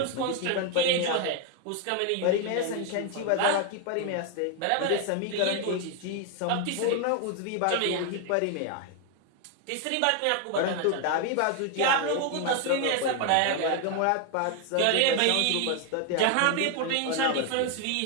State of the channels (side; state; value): both; different; correlation 0.01